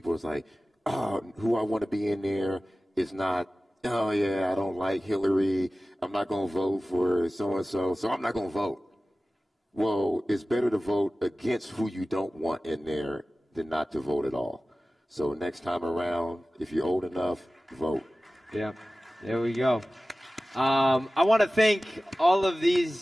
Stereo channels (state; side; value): normal; both; correlation 0.96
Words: is like, oh, who I want to be in there is not, oh, yeah, I don't like Hillary. I'm not going to vote for so-and-so, so I'm not going to vote. Well, it's better to vote against who you don't want in there than not to vote at all. So next time around, if you're old enough, vote. Yeah, there we go. I want to thank all of